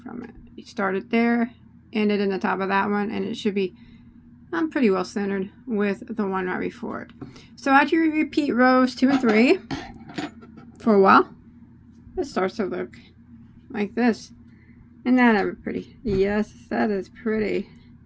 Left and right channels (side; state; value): both; identical; correlation 1.00